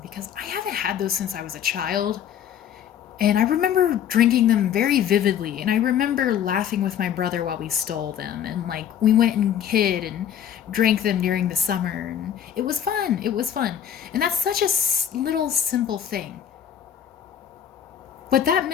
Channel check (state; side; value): quieter; right; 9.4 dB